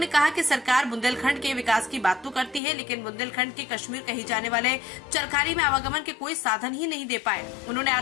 कहा कि सरकार बुंदेलखंड के विकास की बात तो करती है, लेकिन बुंदेलखंड के कश्मीर कही जाने वाले चरखारी में आवागमन के कोई साधन ही नहीं दे पाए। उन्होंने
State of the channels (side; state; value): right; drops out; at 2.6 s